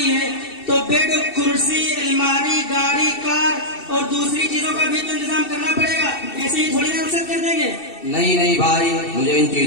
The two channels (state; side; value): late; right; 2.7 ms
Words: है तो बेड, कुर्सी, अलमारी, गाड़ी, कार और दूसरी चीजों का भी तो इंतजाम करना पड़ेगा। ऐसे ही थोड़ी ना रुखसत कर देंगे। नहीं भाई, मुझे इन